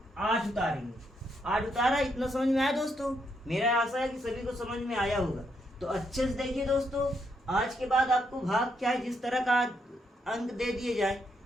8 उतारेंगे। 8 उतारा, इतना समझ में आया दोस्तों? मेरा आशा है कि सभी को समझ में आया होगा। तो अच्छे से देखिए दोस्तों, आज के बाद आपको भाग क्या है, जिस तरह का अंक दे दिए जाए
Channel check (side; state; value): both; normal; correlation 0.77